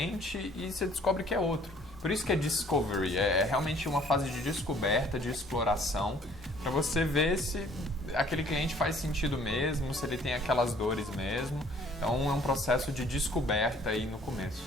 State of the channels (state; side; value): normal; both; correlation 0.57